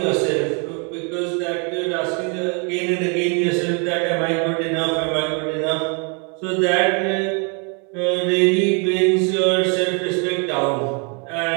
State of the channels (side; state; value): left; quieter; 36.2 dB